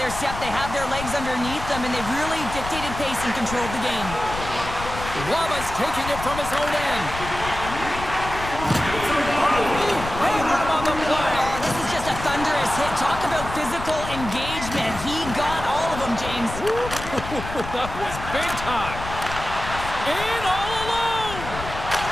step. They have their legs underneath them, and they've really dictated pace and controlled the game. Waba's taking it from his own end. On the play. Oh, this is just a thunderous hit. Talk about physical engagement. He got all of them, James. That was big time. In all alone.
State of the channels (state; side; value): noise; left; rumble, 9 dB below the sound